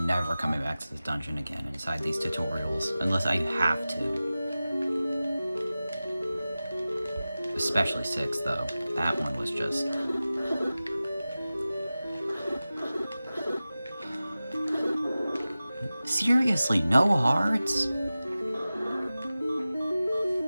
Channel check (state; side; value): inverted; both; correlation -0.96